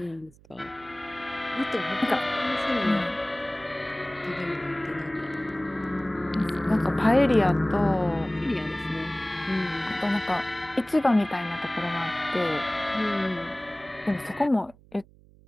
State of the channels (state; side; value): noise; right; hum, 26 dB below the sound